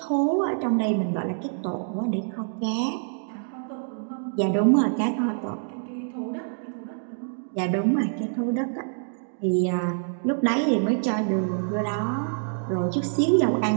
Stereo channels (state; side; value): silent; left; digital silence